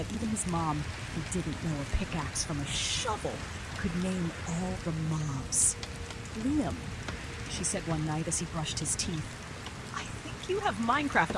even his mom, who didn't know a pickaxe from a shovel, could name all the mobs. Liam, she said one night as he brushed his teeth, I think you have Minecraft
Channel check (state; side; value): identical; both; correlation 1.00